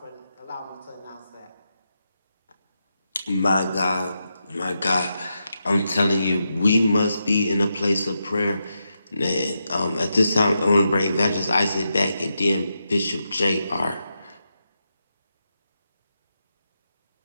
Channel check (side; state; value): both; inverted; correlation -0.86